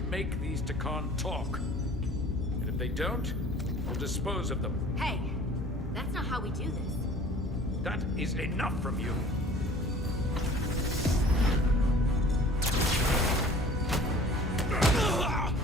these Takan talk. And if they don't, we'll dispose of them. Hey, that's not how we do this. That is enough from you.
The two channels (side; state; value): both; normal; correlation 0.47